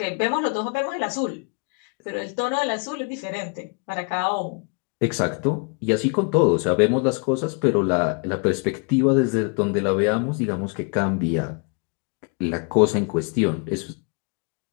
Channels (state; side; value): quieter; right; 37.3 dB